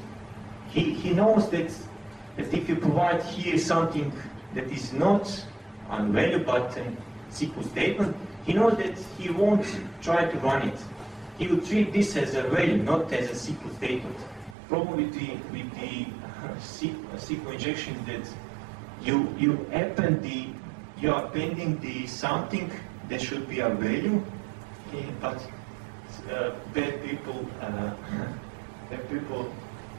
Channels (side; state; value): left; drops out; at 14.6 s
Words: He knows that if you provide here something that is not a value but a SQL statement, he knows that he won't try to run it. He will treat this as a value, not as a SQL statement. Problem with the SQL injection is that you are appending the something that should be a value, but bad people